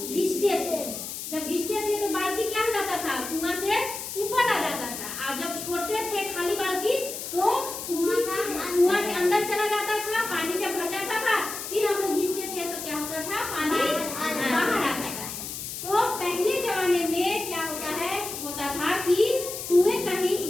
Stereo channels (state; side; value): noise; left; hiss, 7 dB below the sound